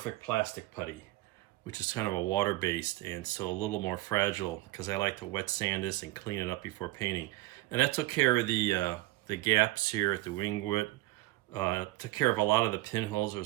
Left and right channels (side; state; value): left; quieter; 18.3 dB